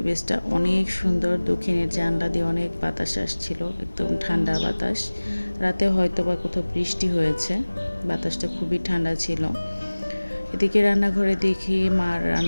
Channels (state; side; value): inverted; both; correlation -1.00